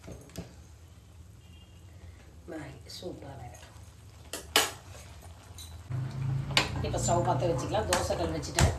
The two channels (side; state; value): both; identical; correlation 1.00